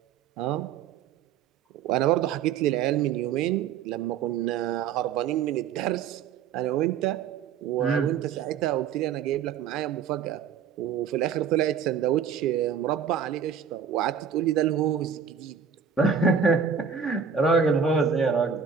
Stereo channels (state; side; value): quieter; left; 7.1 dB